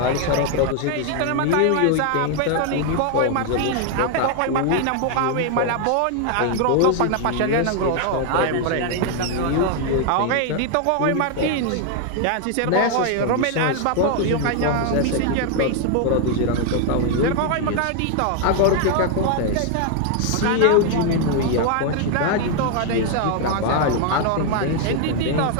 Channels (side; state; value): both; different; correlation 0.00